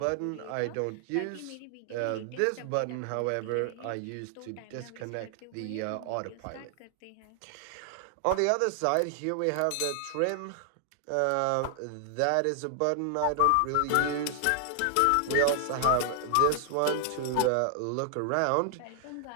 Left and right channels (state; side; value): different; both; correlation 0.00